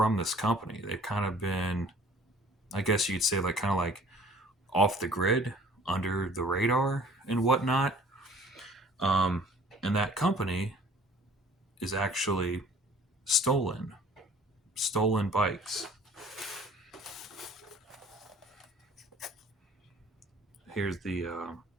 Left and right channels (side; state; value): both; normal; correlation 0.52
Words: this company. They've kind of been, I guess you'd say, like kind of like off the grid, under the radar, and whatnot. Um, and that company is actually stolen, stolen bikes. Here's the